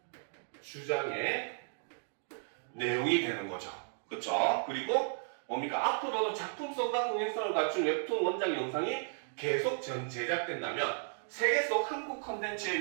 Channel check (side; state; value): left; silent; digital silence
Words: 주장의 내용이 되는 거죠. 그렇죠? 그리고 뭡니까? 앞으로도 작품성과 흥행성을 갖춘 웹툰 원작 영상이 계속 제작된다면 세계 속 한국